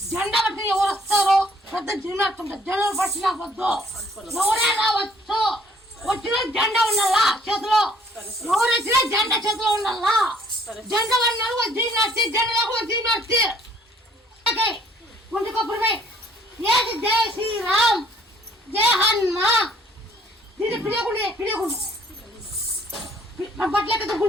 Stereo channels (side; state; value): both; normal; correlation 0.60